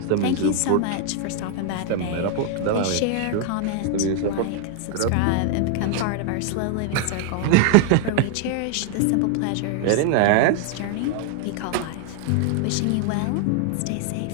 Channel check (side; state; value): both; different; correlation 0.00